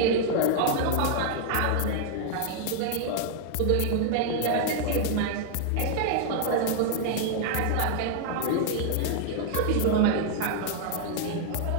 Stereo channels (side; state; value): both; different; correlation 0.00